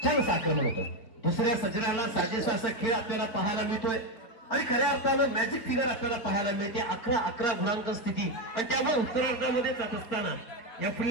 छान असं आक्रमण होतं दुसऱ्या सजनाला साजेसा असा खेळ आपल्याला पाहायला मिळतोय आणि खऱ्या अर्थानं मॅजिक फिगर आपल्याला पाहायला मिळते 11 गुणांक स्थिती आणि त्यामुळे उत्तरार्धामध्ये जात असताना या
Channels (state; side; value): late; right; 4.0 ms